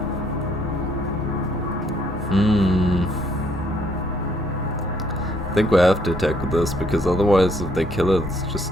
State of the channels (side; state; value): both; normal; correlation 0.67